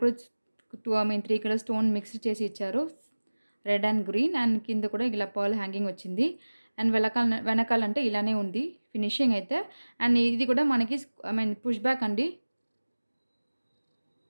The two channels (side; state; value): both; inverted; correlation -1.00